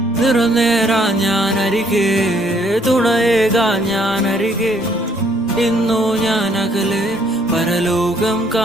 നിറനേരാ ഞാനരികെ തുണയേകാ ഞാനരികെ ഇന്നു ഞാൻ അകലെ പരലോകം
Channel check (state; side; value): normal; both; correlation 0.66